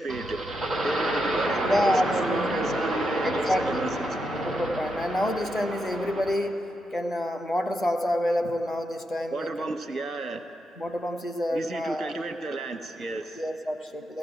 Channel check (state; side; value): normal; both; correlation 0.84